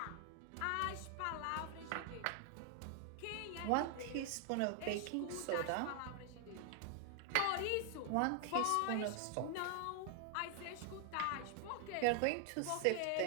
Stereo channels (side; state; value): both; different; correlation 0.00